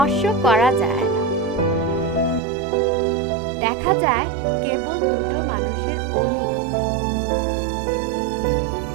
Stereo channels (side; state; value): left; drops out; at 2.4 s